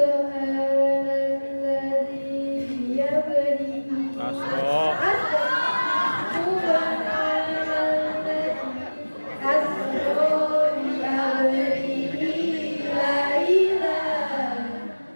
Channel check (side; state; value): both; inverted; correlation -1.00